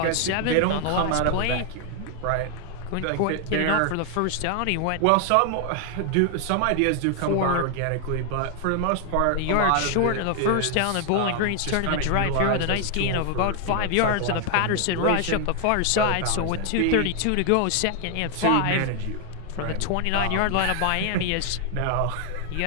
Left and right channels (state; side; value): different; both; correlation 0.00